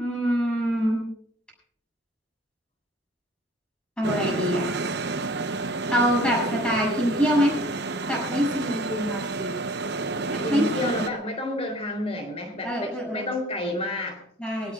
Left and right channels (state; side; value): normal; both; correlation 0.51